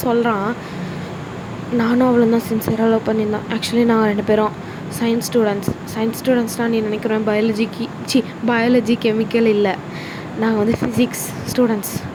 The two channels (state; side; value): identical; both; correlation 1.00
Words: சொல்கிறான் நானும் அவளும் தான் சின்சியராக லவ் பண்ணியிருந்தோம். ஆக்சுவலி நாங்கள் 2 பேரும் சயின்ஸ் ஸ்டூடெண்ட்ஸ்னால் நீ நினைக்கிறேன் பயாலஜி கெமிக்கல் இல்லை, நாங்கள் வந்து ஃபிசிக்ஸ் ஸ்டூடெண்ட்ஸ்.